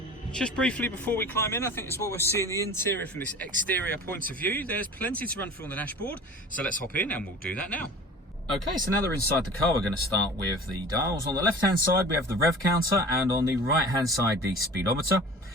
Just briefly before we climb in, I think it's what we're seeing the interior from this exterior point of view. There's plenty to run through on the dashboard, so let's hop in and we'll do that now. Okay, so now that we're inside the car, we're going to start with the dials. On the left-hand side, we have the rev counter, and on the right-hand side, the speedometer.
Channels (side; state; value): both; normal; correlation 0.40